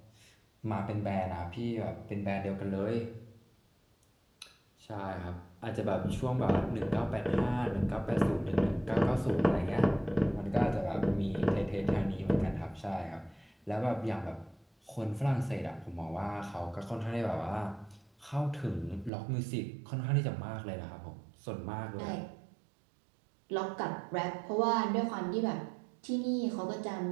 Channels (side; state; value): left; drops out; at 19.1 s